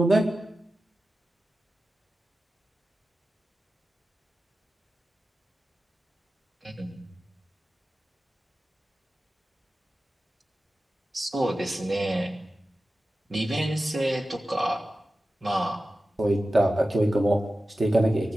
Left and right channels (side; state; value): both; normal; correlation 0.94